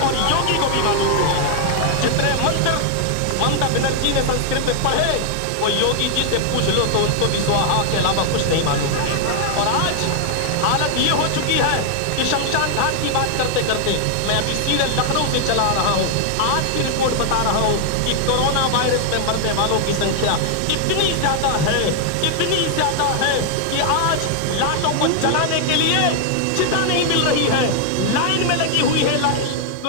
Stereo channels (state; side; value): different; both; correlation 0.00